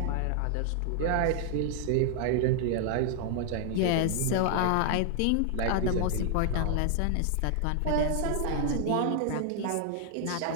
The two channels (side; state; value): both; different; correlation 0.00